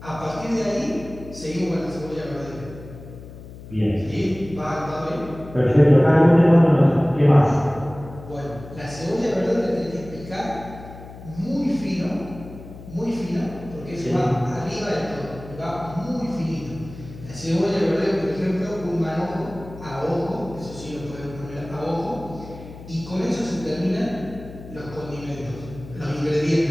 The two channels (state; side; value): noise; left; hum, 15 dB below the sound